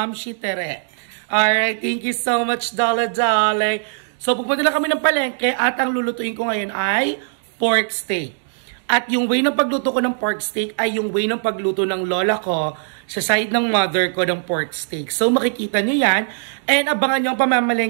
Shi Tere. Alright, thank you so much, Dala-Dala. So, pupunta na kami ng palengke at ang lulutuin ko ngayon ay pork steak. At yung way ng pagluto ko ng pork steak ay yung way ng pagluto ng lola ko sa side ng mother ko ng pork steak. So, makikita nyo yan. And abangan nyo ang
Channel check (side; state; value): left; silent; digital silence